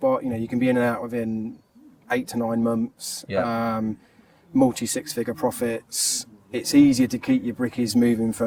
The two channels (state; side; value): identical; both; correlation 1.00